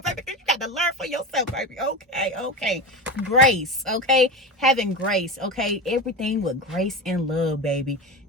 baby, because you got to learn for yourself, baby. Okay. Grace, okay? Having grace, okay? Everything with grace and love, baby.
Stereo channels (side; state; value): both; normal; correlation 0.23